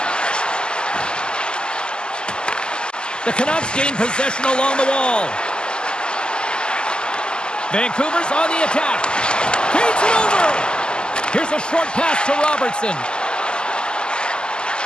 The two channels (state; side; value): late; right; 0.047 ms